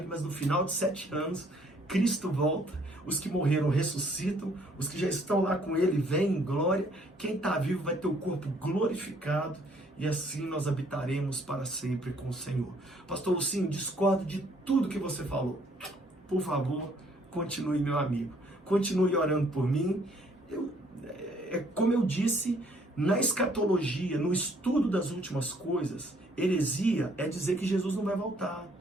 mas no final de 7 anos, Cristo volta. Os que morreram ressuscitam, os que já estão lá com ele vêm em glória, quem está vivo vai ter o corpo glorificado e assim nós habitaremos para sempre com o Senhor. Pastor Lucinho, discordo de tudo que você falou. Por favor, continue, meu amigo. Continue orando por mim. Como eu disse, na escatologia, no estudo das últimas coisas, heresia é dizer que Jesus não vai voltar.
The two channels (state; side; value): normal; both; correlation 0.63